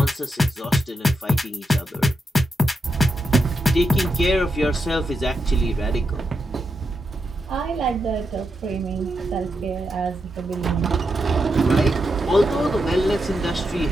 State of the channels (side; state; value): both; normal; correlation 0.85